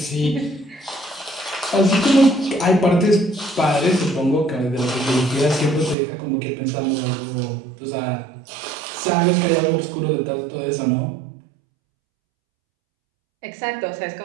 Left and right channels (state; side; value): drops out; left; at 6.0 s